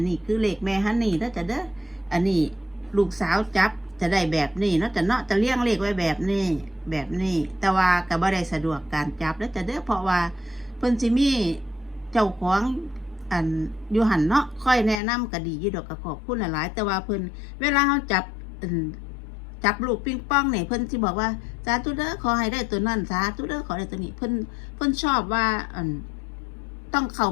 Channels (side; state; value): right; drops out; at 15.0 s